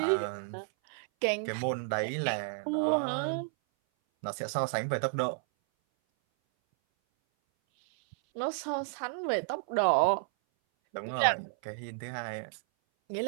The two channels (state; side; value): silent; left; 57 dB below the other